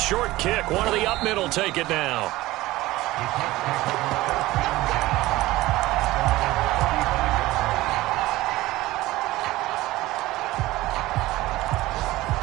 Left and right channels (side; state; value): left; quieter; 18.0 dB